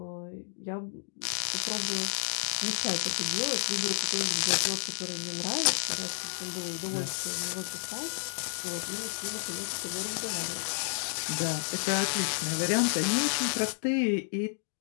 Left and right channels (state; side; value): silent; right; digital silence